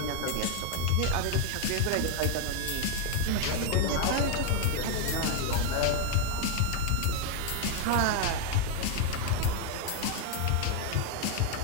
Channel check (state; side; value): different; both; correlation 0.01